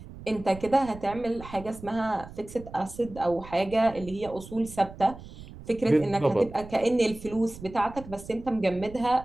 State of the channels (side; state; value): right; noise; rumble, 16 dB below the sound